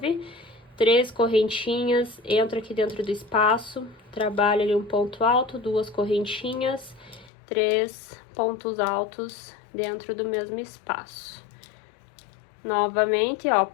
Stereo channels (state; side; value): drops out; right; at 7.3 s